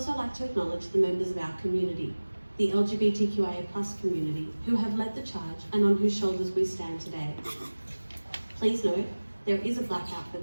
like to acknowledge the members of our community, the LGBTQIA+ community, who have led the charge and on whose shoulders we stand today. Please note, there is a blackout for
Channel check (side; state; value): both; inverted; correlation -1.00